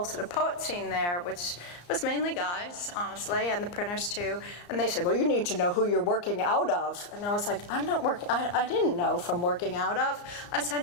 sort of poet scene there, which was mainly guys, honestly, and the printers too, and they said, "Well, you need to know who you're working out of." And I was like, "I'm not working, I didn't know from working out of." I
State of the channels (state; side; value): late; right; 34 ms